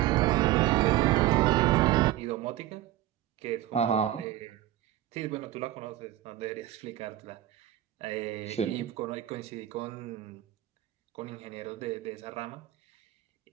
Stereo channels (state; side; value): quieter; left; 14.0 dB